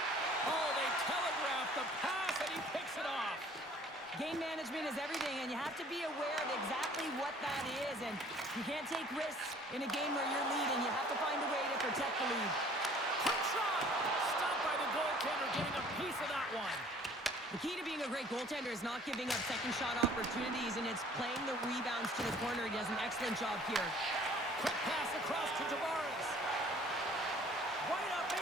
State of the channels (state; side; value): normal; both; correlation 0.53